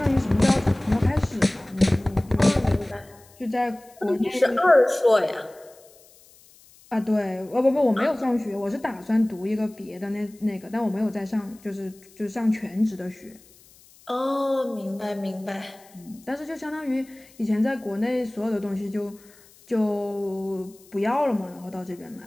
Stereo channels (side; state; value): left; noise; hiss, 26 dB below the sound